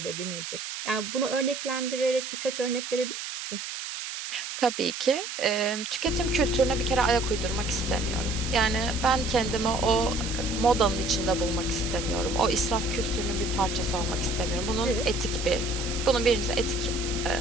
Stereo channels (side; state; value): right; noise; hiss, 7 dB below the sound